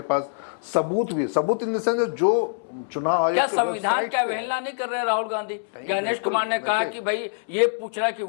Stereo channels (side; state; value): right; silent; 62 dB below the other